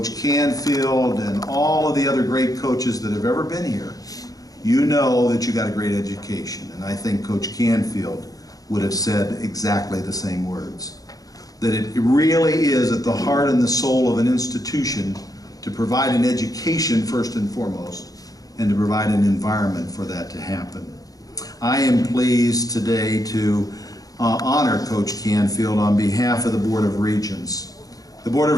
Canfield and all of the other great coaches that have ever been here, you know that you got a great education. And I think Coach Canfield would have said exactly the same words. That it really is at the heart and the soul of an institution to provide an education first and foremost, and to provide an environment for that to happen. I am pleased today to honor Coach Canfield on behalf of the Board of Regents. The Board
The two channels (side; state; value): right; late; 0.18 ms